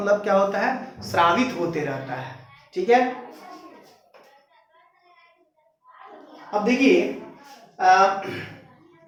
क्या होता है? स्रावित होते रहता है। ठीक है, अब देखिए,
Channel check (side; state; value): both; identical; correlation 1.00